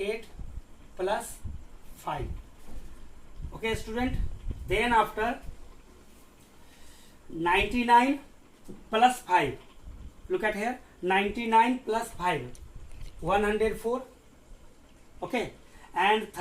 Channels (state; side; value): identical; both; correlation 1.00